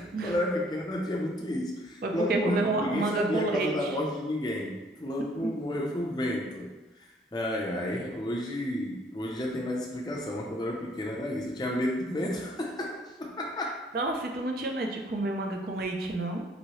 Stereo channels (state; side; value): normal; both; correlation 0.63